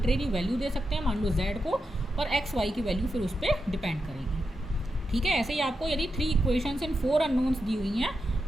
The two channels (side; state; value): both; normal; correlation 0.88